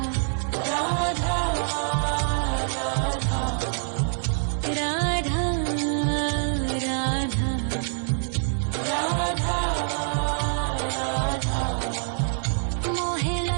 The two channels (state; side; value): silent; left; 61 dB below the other